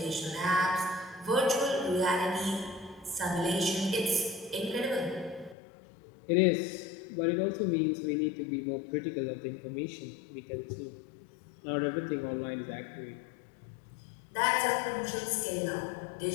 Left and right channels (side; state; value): right; drops out; at 5.6 s